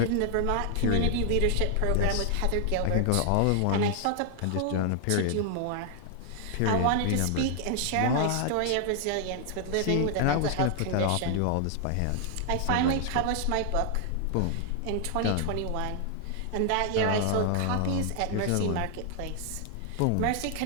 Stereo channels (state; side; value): different; both; correlation 0.00